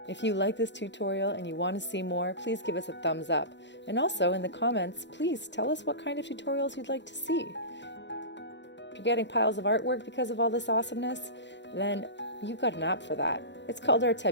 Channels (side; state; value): right; late; 0.52 ms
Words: If you like this tutorial and you want to see more, please give us a thumbs up. And also in the comments, please tell us what kind of tutorials you'd like to see. If you're getting piles of artwork because of all this awesomeness, then you've got an app for that. It's called